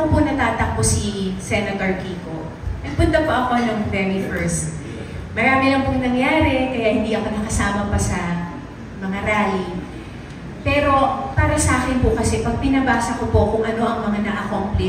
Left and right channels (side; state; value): both; identical; correlation 1.00